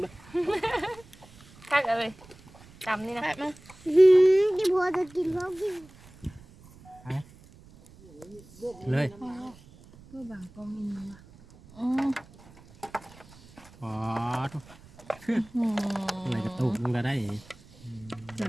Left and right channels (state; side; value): noise; right; rumble, 23 dB below the sound